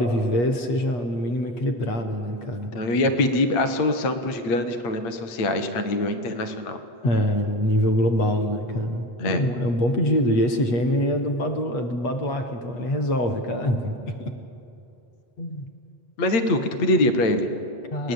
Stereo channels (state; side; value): late; right; 8.4 ms